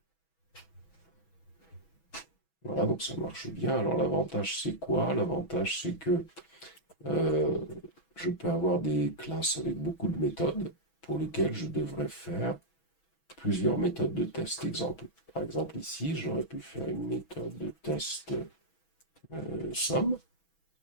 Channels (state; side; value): late; right; 6.1 ms